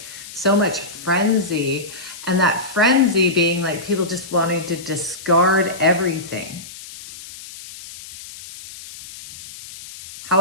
so much frenzy, and that frenzy being like people just wanting to discard everything.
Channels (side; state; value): left; noise; hiss, 15 dB below the sound